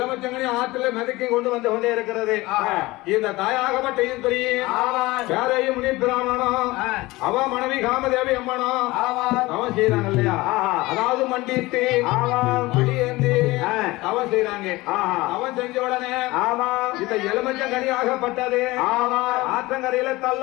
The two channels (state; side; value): quieter; right; 20.4 dB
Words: ஆற்றில் மிதக்கி கொண்டு வந்து கொண்டே இருக்கிறது. இந்த தாயாகப்பட்ட ஈஸ்வரி யாரையும் முனி பிராமணனும் அவ மனைவி காமதேவி அம்மனும் அவன் செய்யறாங்க இல்லையா, அதாவது மண்டிட்டு மடியேந்தி அவன் செய்யறாங்க. அவன் செஞ்ச உடனே இந்த எலுமிச்சங்கனி ஆகப்பட்டது ஆற்றங்கரையில